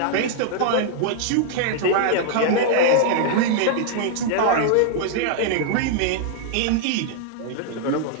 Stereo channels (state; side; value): different; both; correlation -0.01